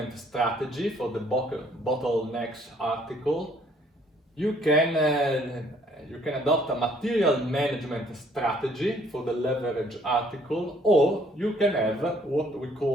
strategy for the bottlenecks article. You can adopt a material management strategy for the leverage article, or you can have what we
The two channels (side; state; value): both; normal; correlation 0.62